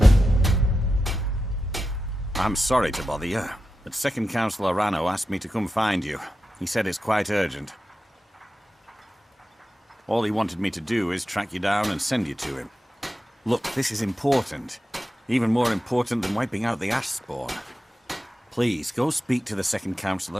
I'm sorry to bother you, but Second Councillor Rano asked me to come find you. He said it's quite urgent. All he wanted me to do is track you down and send you to him. Look, this is important. Even more important than wiping out the ash spawn. Please, go speak to the Second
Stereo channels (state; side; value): normal; both; correlation 0.91